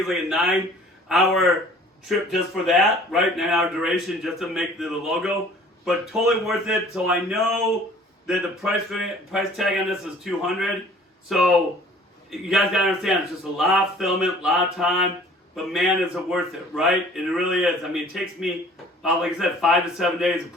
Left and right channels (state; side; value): normal; both; correlation 0.51